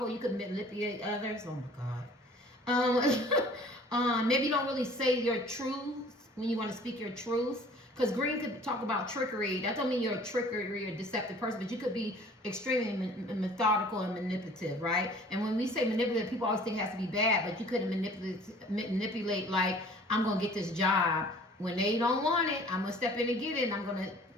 You could manipulate others. Oh my God. Maybe you don't really say your truth when you want to speak your truth. Because green could talk about trickery. That don't mean you're a trickery or deceptive person, but you could be extremely methodical and manipulative, right? And when we say manipulative, people always think it has to be bad, but you couldn't manipulate like, I'm going to get this job. When they don't want it, I'm going to step in and get it, and I'm going to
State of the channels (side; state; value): both; normal; correlation 0.50